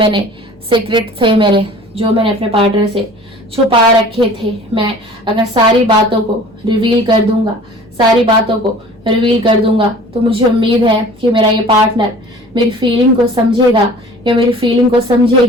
सीक्रेट थे मेरे, जो मैंने अपने पार्टनर से छुपा रखे थे, मैं अगर सारी बातों को रिवील कर दूंगा, सारी बातों को रिवील कर दूंगा, तो मुझे उम्मीद है कि मेरा ये पार्टनर मेरी फीलिंग को समझेगा या मेरी फीलिंग को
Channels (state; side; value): normal; both; correlation 0.46